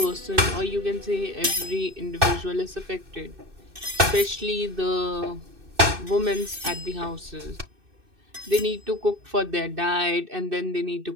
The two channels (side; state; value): left; late; 2.6 ms